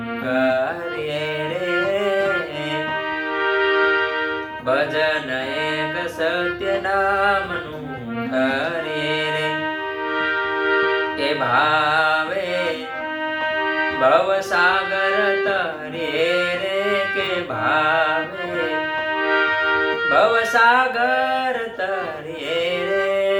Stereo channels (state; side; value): identical; both; correlation 1.00